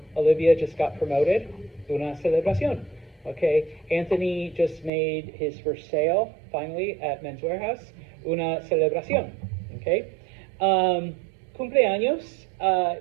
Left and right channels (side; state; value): left; drops out; at 4.9 s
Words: just got promoted, una celebración, okay. Anthony just made his first sale, finally, at Men's Warehouse, una celebración, okay. Cumpleaños